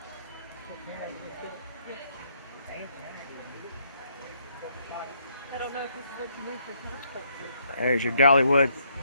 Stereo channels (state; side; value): inverted; both; correlation -0.71